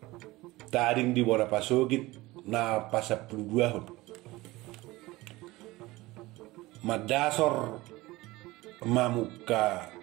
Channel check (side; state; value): left; quieter; 19.9 dB